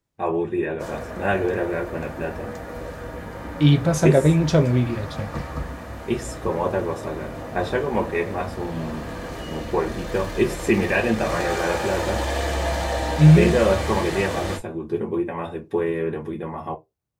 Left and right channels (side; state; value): both; identical; correlation 1.00